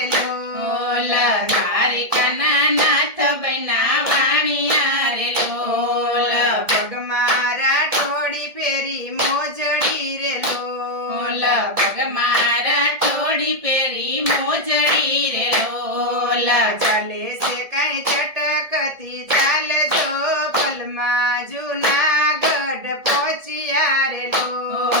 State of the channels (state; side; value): late; left; 1.7 ms